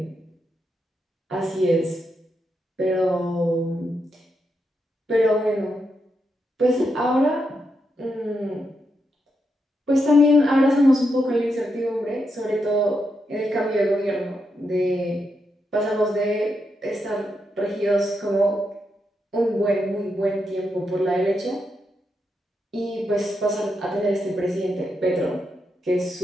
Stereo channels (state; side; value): normal; both; correlation 0.83